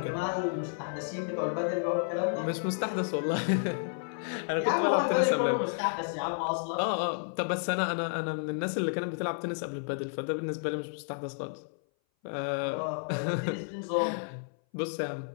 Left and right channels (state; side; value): silent; right; 57 dB below the other